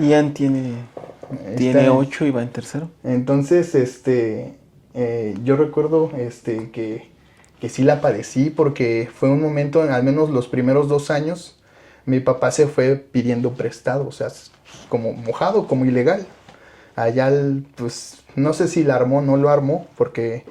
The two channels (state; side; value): identical; both; correlation 1.00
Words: Ian tiene Está, 8 y va en tercero. entonces, yo recuerdo que sí la padecí porque fue un momento, al menos los primeros 2 años, mi papá se fue pidiendo prestado, o sea, como mojado, como ilegal. Allá, pues, no sé si la armó o no lo armó, porque